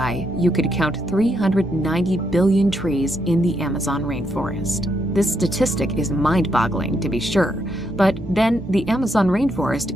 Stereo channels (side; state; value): both; normal; correlation 0.78